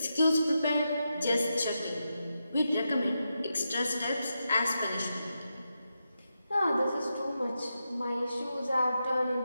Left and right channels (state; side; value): inverted; both; correlation -0.87